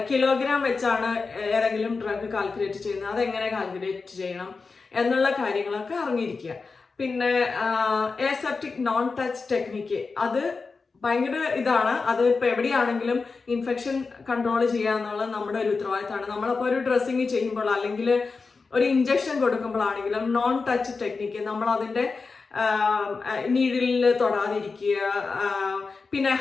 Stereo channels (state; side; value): quieter; right; 4.4 dB